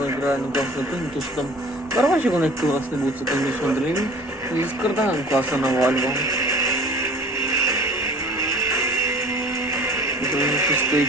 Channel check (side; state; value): both; normal; correlation 0.45